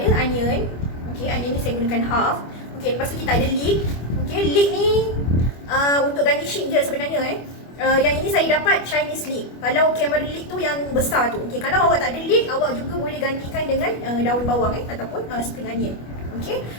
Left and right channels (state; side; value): late; right; 25 ms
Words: onion. Okey, onion ni saya gunakan half. Okey, lepas tu kita ada leek. Okey, leek ni untuk garnishing je sebenarnya yang ini saya dapat Chinese leek. Kalau camera leek tu yang besar tu. Okey, kalau awak tak ada leek, awak juga boleh gantikan dengan daun bawang ataupun spring onion. Okey,